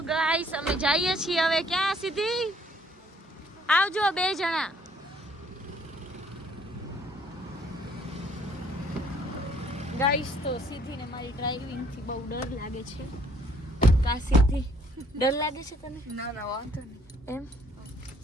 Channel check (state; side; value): normal; both; correlation 0.62